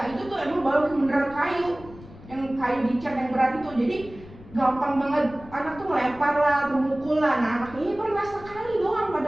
itu tuh emang balok yang beneran kayu, yang kayu dicat yang berat itu. Jadi gampang banget anak tuh ngelempar lah, memukul lah. Nah, anaknya ini pernah sekali doang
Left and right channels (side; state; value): left; noise; rumble, 18 dB below the sound